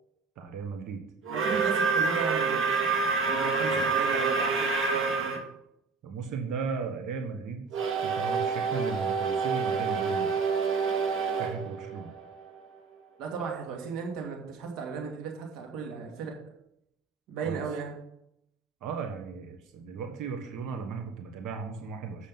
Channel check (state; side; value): quieter; left; 4.7 dB